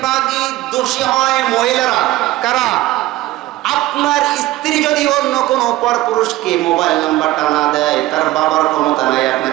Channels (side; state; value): left; quieter; 16.6 dB